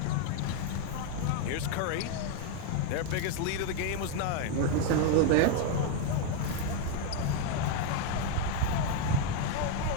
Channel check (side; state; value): both; different; correlation 0.01